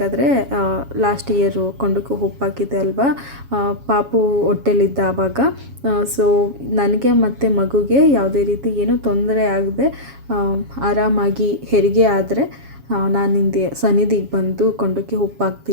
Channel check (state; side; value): late; left; 7.3 ms